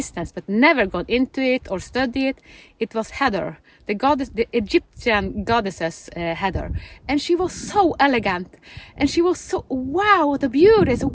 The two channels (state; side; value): identical; both; correlation 1.00